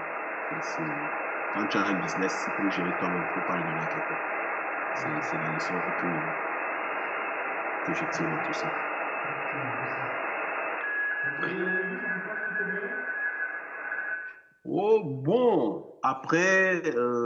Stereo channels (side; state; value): both; identical; correlation 1.00